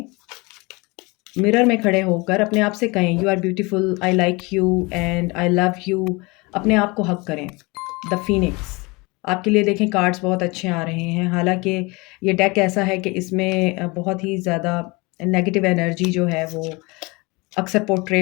मिरर में खड़े होकर अपने आप से कहें, you are beautiful, I like you and I love you. अपने आप को हग करें। The phoenix. आपके लिए देखें कार्ड्स बहुत अच्छे आ रहे हैं। हालाँकि ये डेक ऐसा है कि इसमें बहुत ही ज़्यादा नेगेटिव एनर्जी जो है वो अक्सर पोर्ट्रे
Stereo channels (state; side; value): quieter; right; 25.8 dB